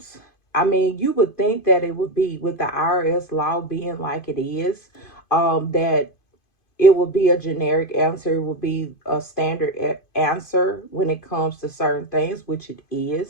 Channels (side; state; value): right; late; 2.5 ms